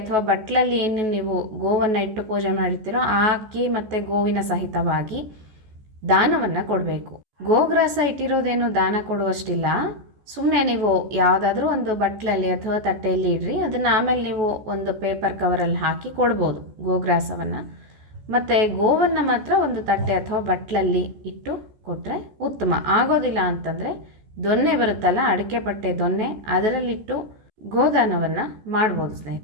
ಬಟ್ಲಲ್ಲಿ ಏನು ನೀವು ಗೋವನ್ನು ಇಟ್ಟು ಪೂಜೆ ಮಾಡಿರ್ತೀರೋ ಆ ಅಕ್ಕಿ ಮತ್ತು ಗೋವಿನ ಸಹಿತವಾಗಿ ದಾನವನ್ನು ಕೊಡಬೇಕು. ಗೋಗ್ರಾಸ ಇಟ್ಟಿರೋದೇನು ದಾನ ಕೊಡುವಷ್ಟಿಲ್ಲ. ಸುಮ್ಮನೆ ನೀವು ಯಾವುದಾದ್ರೂ ಒಂದು ಬಟ್ಲಲ್ಲಿ ಅಥವಾ ತಟ್ಟೆಯಲ್ಲಿ ಇಡ್ರಿ, ಅದನ್ನು ಆಮೇಲೆ ನೀವು ಒಂದು ಪೇಪರ್ ಕವರಲ್ಲಿ ಹಾಕಿ ಕೊಡ್ಬೋದು ಗೋಗ್ರಾಸವನ್ನು. ಮತ್ತು ಗೋವನ್ನು ಮಾತ್ರ ಒಂದು ತಟ್ಟೆ ಅಥವಾ ಬಟ್ಲಲ್ಲಿ ಇಟ್ಟು ಕೊಟ್ಟರೆ ಉತ್ತಮ. ಆಗೋದಿಲ್ಲ ಅಂತಂದರೆ ದೊನ್ನೆ ಬರುತ್ತಲ್ಲ, ಅಡಿಕೆ ಪಟ್ಟೆ ದೊನ್ನೆ, ಅದರಲ್ಲಿಟ್ಟು ಗೋದಾನವನ್ನು ಮಾಡ್ಬೋದು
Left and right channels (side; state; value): left; late; 14 ms